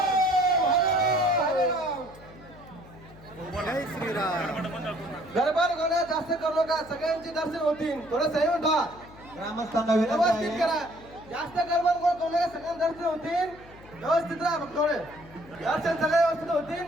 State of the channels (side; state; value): left; noise; hum, 21 dB below the sound